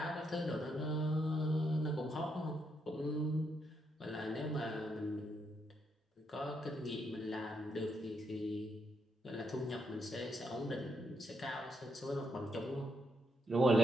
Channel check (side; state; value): both; normal; correlation 0.78